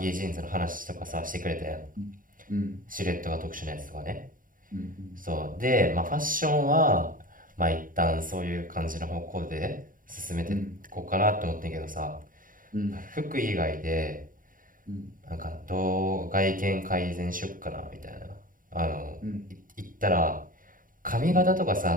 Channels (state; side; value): late; left; 0.40 ms